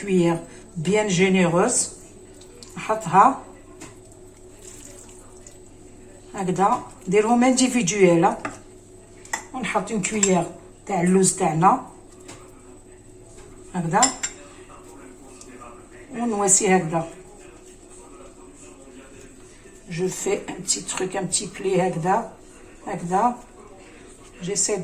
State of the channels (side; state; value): both; identical; correlation 1.00